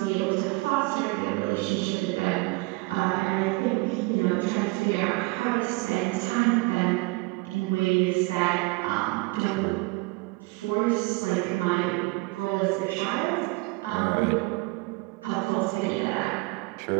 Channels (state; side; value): quieter; left; 25.2 dB